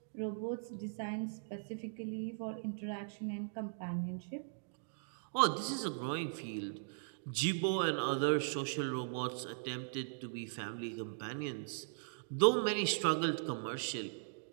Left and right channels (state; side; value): silent; left; digital silence